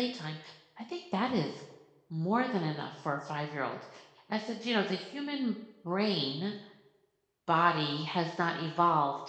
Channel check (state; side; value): identical; both; correlation 1.00